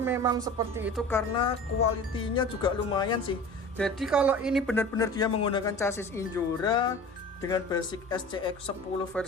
memang seperti itu karena kualitinya juga lumayan sih. Jadi kalau ini benar-benar dia menggunakan chassis Injora dengan basic SCX10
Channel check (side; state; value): both; normal; correlation 0.38